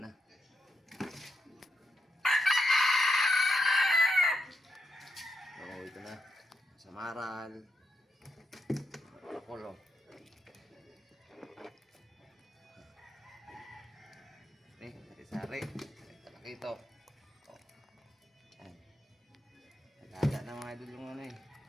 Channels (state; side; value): normal; both; correlation 0.83